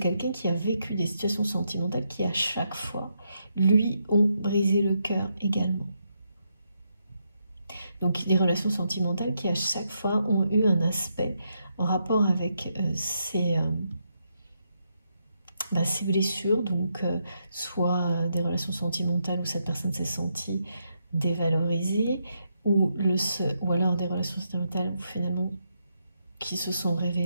qui a vécu des situations sentimentales qui à chaque fois lui ont brisé le cœur également. Donc des relations sentimentales qui à chaque fois ont eu un aspect en rapport avec ces blessures, donc soit des relations sentimentales où cette personne s'est sentie dévalorisée, ou alors des relations sentimentales où finalement qui se sont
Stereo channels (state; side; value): inverted; both; correlation -0.80